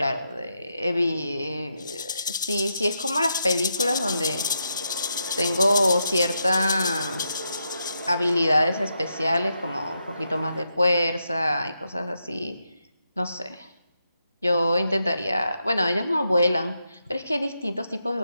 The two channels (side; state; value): both; inverted; correlation -0.83